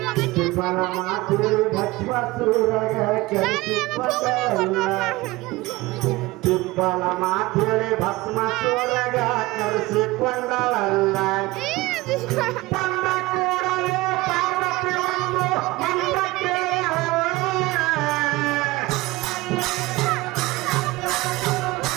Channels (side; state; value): left; quieter; 20.5 dB